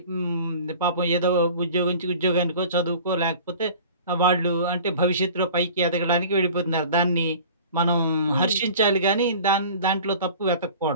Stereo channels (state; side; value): inverted; both; correlation -0.43